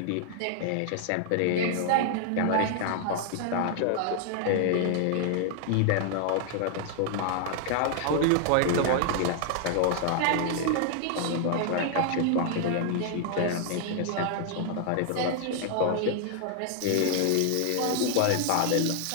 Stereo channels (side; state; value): both; different; correlation 0.00